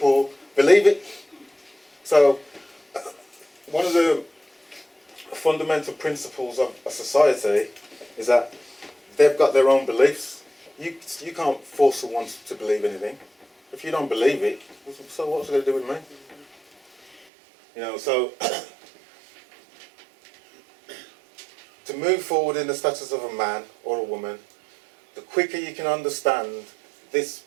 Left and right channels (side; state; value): left; drops out; at 17.2 s